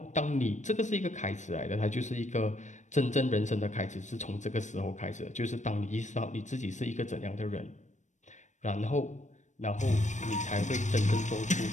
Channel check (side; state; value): right; late; 0.35 ms